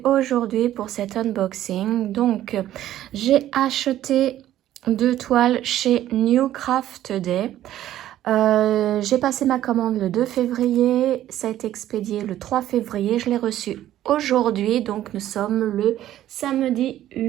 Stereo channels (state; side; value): quieter; left; 12.8 dB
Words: aujourd'hui pour cet unboxing. Donc, j'ai acheté 2 toiles chez New Craft Day. J'ai passé ma commande le 2 février, ça a été expédié le 3 février, je l'ai reçu aujourd'hui, donc nous sommes le samedi